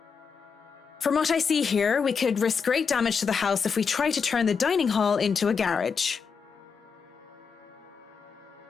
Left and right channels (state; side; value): quieter; right; 5.9 dB